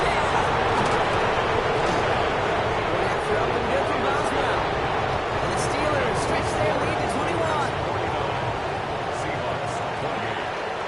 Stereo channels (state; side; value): identical; both; correlation 1.00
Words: That throw and good from Boswell. And the Steelers stretch their lead to 21. Seahawks 28.